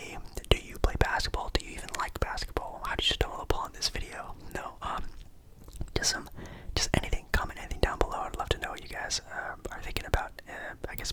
Do you play basketball? Do you even like basketball? How did you stumble upon this video? No, just anything, comment anything down below. I'd love to know what you guys are thinking about, I guess,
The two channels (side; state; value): both; identical; correlation 1.00